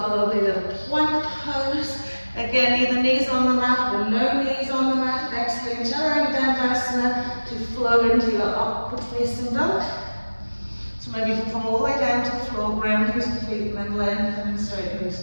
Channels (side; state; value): both; inverted; correlation -1.00